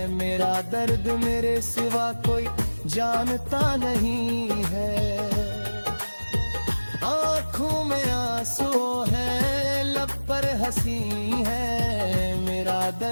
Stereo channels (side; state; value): both; inverted; correlation -1.00